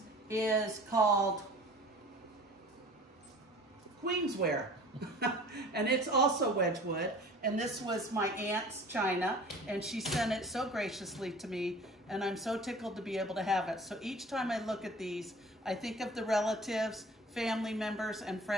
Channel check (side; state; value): both; normal; correlation 0.45